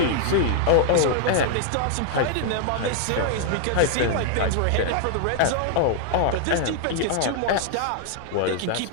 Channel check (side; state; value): both; different; correlation -0.01